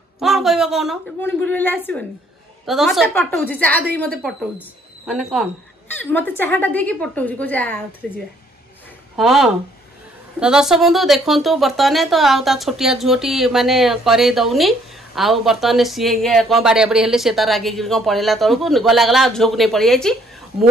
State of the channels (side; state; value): both; normal; correlation 0.64